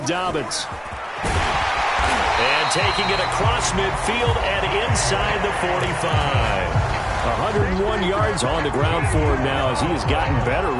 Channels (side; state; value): both; identical; correlation 1.00